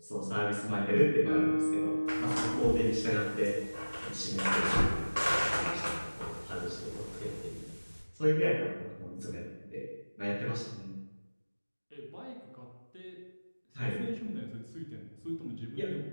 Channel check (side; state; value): both; inverted; correlation -1.00